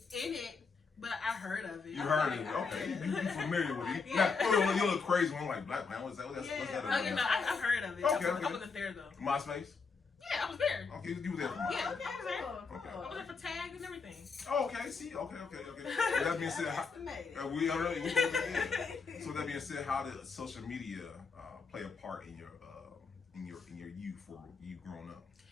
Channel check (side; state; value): right; quieter; 4.9 dB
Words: in it, but I heard of it. You heard it, okay? You familiar with it? You look crazy one like Black Planet. What's that? What's that? I heard of it. Okay. I wasn't there though. MySpace. Yeah, I was there. Okay, you were there for MySpace. Yeah, I was there. Okay. I was there for tags and everything. Oh, okay. See, okay. With that being said, we already. So with that being said, how did social media play a part in your youth or you growing up?